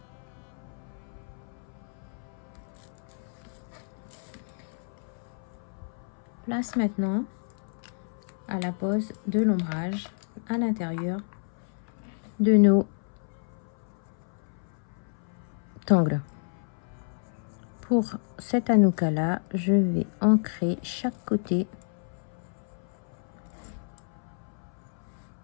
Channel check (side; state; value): right; silent; 58 dB below the other